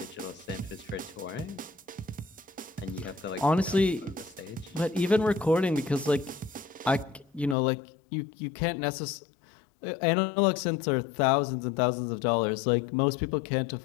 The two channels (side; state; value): right; drops out; at 7.6 s